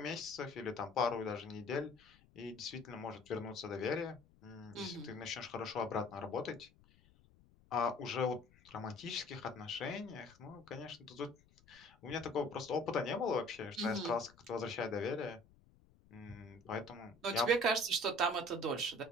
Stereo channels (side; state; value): left; noise; rumble, 27 dB below the sound